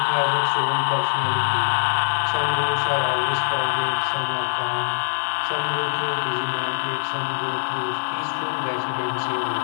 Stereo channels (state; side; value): silent; right; digital silence